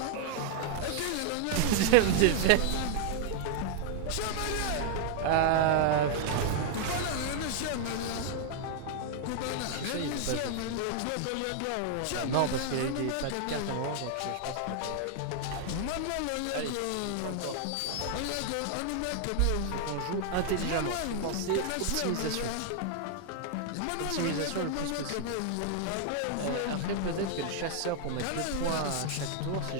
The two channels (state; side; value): different; both; correlation 0.00